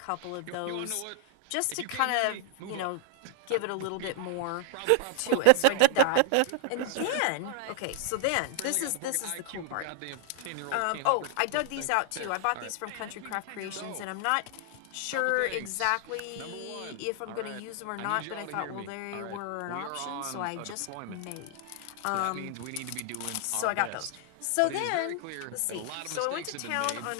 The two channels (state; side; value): different; both; correlation 0.00